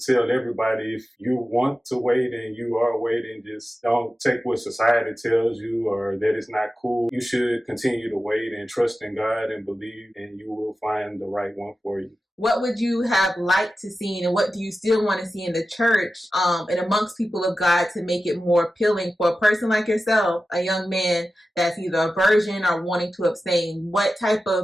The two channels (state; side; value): normal; both; correlation 0.93